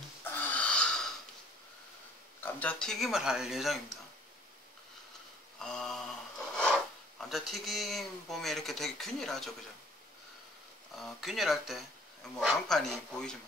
감자튀김을 할 예정입니다. 감자튀김 보면 이렇게 되게 균일하죠, 그죠? 균일할 때 뭐 강판이 보이지만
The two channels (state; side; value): normal; both; correlation 0.58